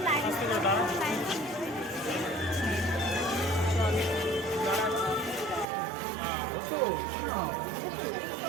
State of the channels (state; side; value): drops out; left; at 5.7 s